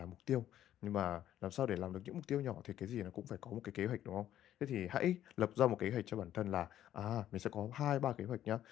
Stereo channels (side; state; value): right; quieter; 11.8 dB